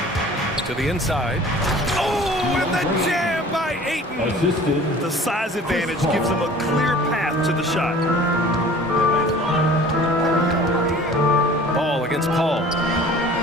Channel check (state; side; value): normal; both; correlation 0.46